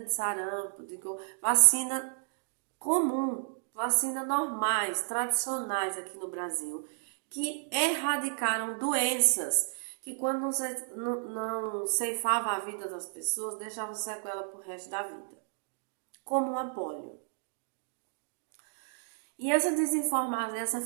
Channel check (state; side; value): silent; left; digital silence